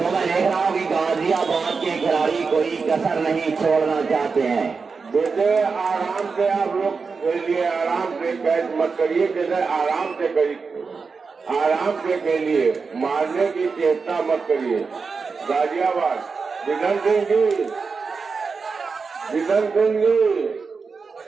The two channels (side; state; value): left; quieter; 4.9 dB